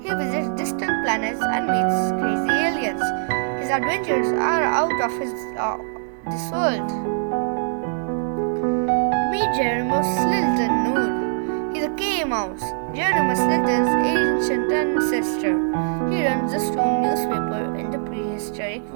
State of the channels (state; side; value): silent; left; digital silence